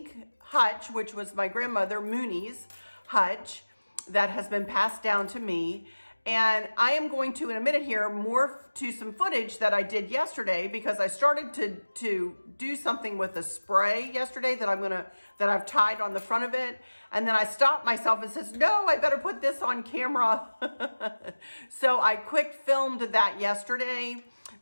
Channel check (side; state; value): both; inverted; correlation -1.00